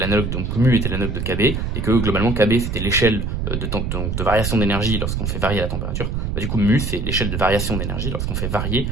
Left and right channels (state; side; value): noise; right; rumble, 2 dB below the sound